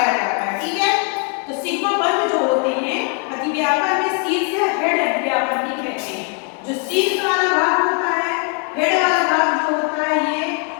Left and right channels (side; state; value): right; quieter; 34.6 dB